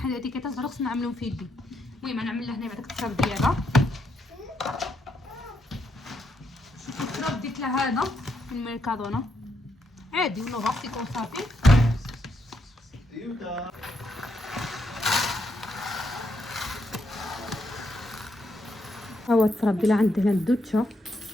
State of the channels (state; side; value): normal; both; correlation 0.78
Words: الاتيكيتات ضروري خصني نعملهم في يدي. المهم نعمل لها هنا بعد التراب ديالها. شوفوا التراب ديت لها هذا من ميركادونا عادي ونغطي كون صافي. هو التراب ديال عندي هنا الدوتشا